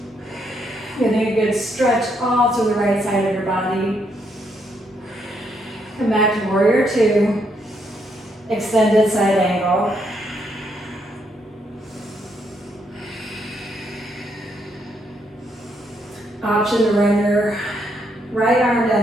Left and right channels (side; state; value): both; normal; correlation 0.75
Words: Getting a good stretch all to the right side of your body. Come back to warrior two. Extended side angle. Option to run your right arm